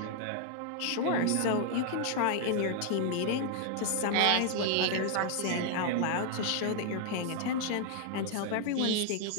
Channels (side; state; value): both; different; correlation -0.01